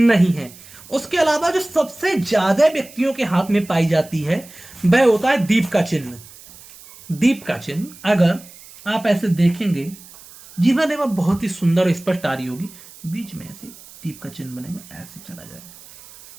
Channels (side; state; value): right; noise; hiss, 20 dB below the sound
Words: है। उसके अलावा जो सबसे ज्यादा व्यक्तियों के हाथ में पाई जाती है वह होता है दीप का चिन्ह। दीप का चिन्ह अगर आप ऐसे देखेंगे, जीवन रेखा बहुत ही सुंदर और स्पष्ट आ रही होगी, बीच में ऐसे दीप का चिन्ह बनेगा, ऐसे चला जाएगा।